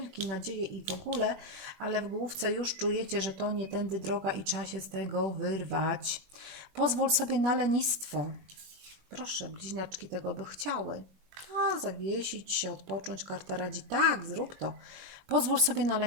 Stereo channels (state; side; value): late; left; 21 ms